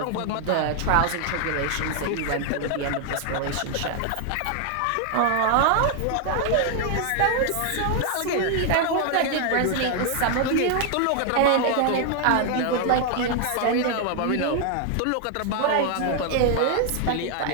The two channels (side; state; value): both; different; correlation 0.00